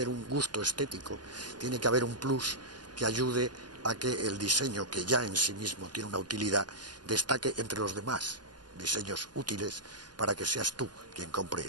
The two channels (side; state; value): left; late; 0.70 ms